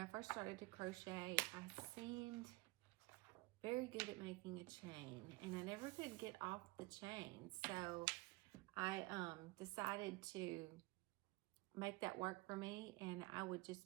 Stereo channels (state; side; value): quieter; left; 22.4 dB